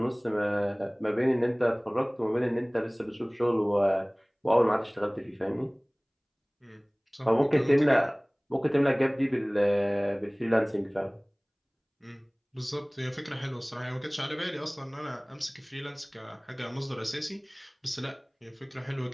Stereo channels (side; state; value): both; identical; correlation 1.00